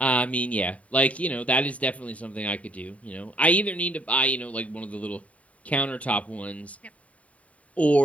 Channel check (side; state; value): right; late; 0.067 ms